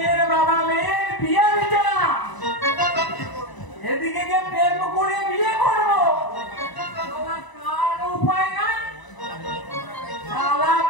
বাবা মেয়ের বিয়ে দিচ্ছে না। এদিকে যে প্রেম করে বিয়ে করবো কার উপায় নাই, শালা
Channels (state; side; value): late; right; 1.0 ms